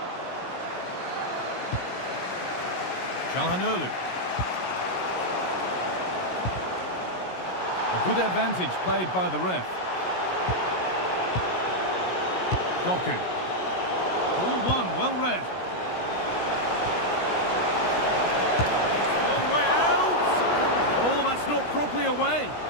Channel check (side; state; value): right; late; 16 ms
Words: Çalhanoğlu. A good advantage played by the ref. Doku. Ball one, well read. Long way out! Oh, that's not properly away.